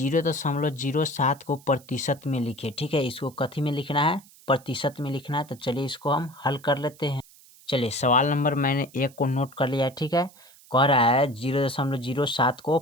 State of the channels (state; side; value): noise; right; hiss, 25 dB below the sound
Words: को प्रतिशत में लिखे। ठीक है, इसको कथी में लिखना है, प्रतिशत में लिखना है। तो चलिए इसको हम हल कर लेते हैं। चलिए, सवाल नंबर मैंने 1 को नोट कर लिया है। ठीक है, कह रहा है 0.07 को